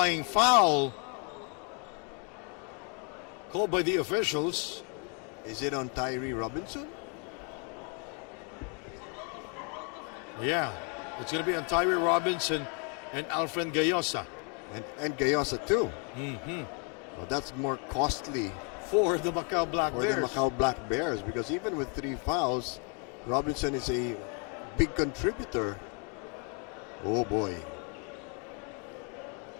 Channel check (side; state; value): right; quieter; 36.5 dB